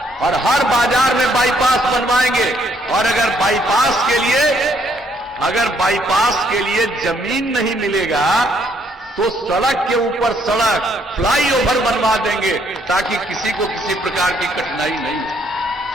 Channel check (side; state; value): both; normal; correlation 0.69